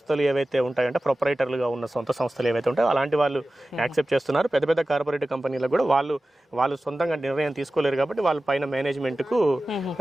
ఏవైతే ఉంటాయంటే ప్రొపరైటర్లుగా ఉన్న సొంత సంస్థలు ఏవైతే ఉంటాయో అలాంటి వాళ్ళు యాక్సెప్ట్ చేస్తున్నారు. పెద్ద పెద్ద కార్పొరేట్ కంపెనీలకు కూడా వాళ్ళు సొంతంగా నిర్ణయం తీసుకోలేరు కాబట్టి వాళ్ళ పైన మేనేజ్మెంట్కు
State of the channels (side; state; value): both; normal; correlation 0.95